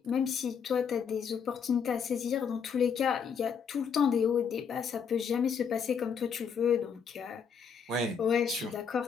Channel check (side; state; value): right; quieter; 6.7 dB